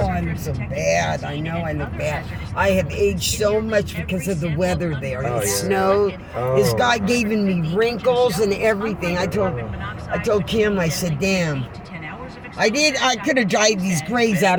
look so bad. I know I look bad. I have aged so much because of the weather there. It snowed. This guy giving me wrinkles and everything. I told Kim, I said, damn. I could have dried these grays out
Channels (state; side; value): identical; both; correlation 1.00